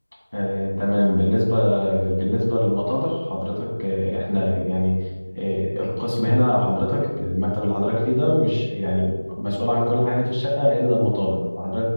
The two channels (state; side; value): inverted; both; correlation -1.00